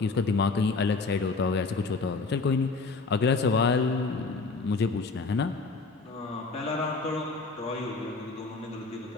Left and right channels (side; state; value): right; quieter; 4.0 dB